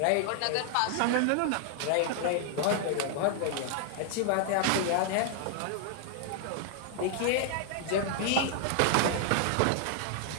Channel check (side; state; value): both; different; correlation 0.00